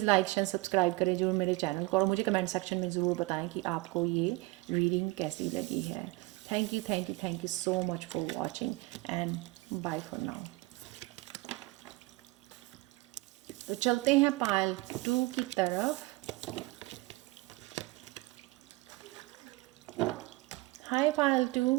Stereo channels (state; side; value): quieter; left; 22.1 dB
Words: लाइक शेयर सब्सक्राइब करें जरूर मेरे चैनल को, और मुझे कमेंट सेक्शन में ज़रूर बताएं कि आपको ये रीडिंग कैसी लगी है। Thank you so much for watching and bye for now. तो चलते हैं पायल 2 की तरफ। हाय पायल 2,